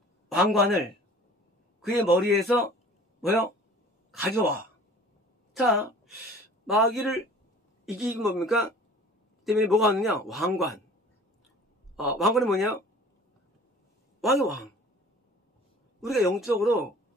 왕관을 그의 머리에서 뭐요? 가져와. 자, 마귀를 이기기 뭡니까? 때문에 뭐가 왔느냐? 왕관. 왕관이 뭐냐? 왕의 왕. 우리가 영적으로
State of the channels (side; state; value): both; normal; correlation 0.47